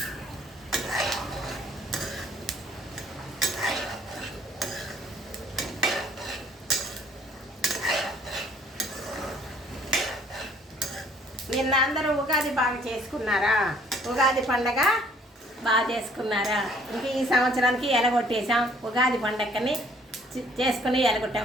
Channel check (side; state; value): both; normal; correlation 0.59